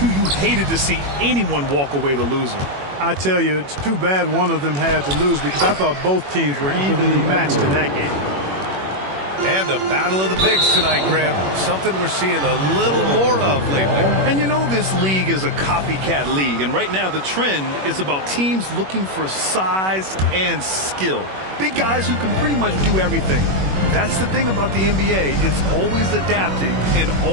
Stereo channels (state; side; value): late; left; 21 ms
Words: You hated to see anyone walk away the loser. I tell you, it's too bad one of them had to lose because I thought both teams were evenly matched in that game. And a battle of the bigs tonight, Grant. Something we're seeing a little more of lately. And you know this league is a copycat league, and right now the trend is about teams looking for size and skill. Big guys who can pretty much do everything. That's the thing about the NBA. It's always adapting and